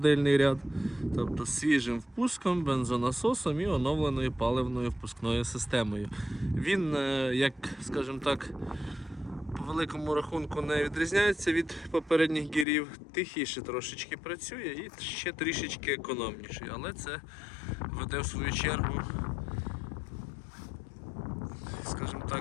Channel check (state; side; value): drops out; right; at 12.7 s